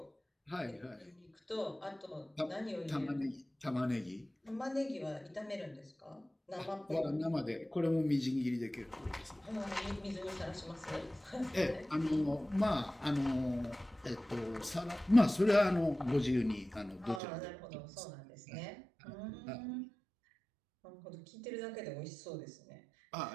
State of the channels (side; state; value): left; drops out; at 17.2 s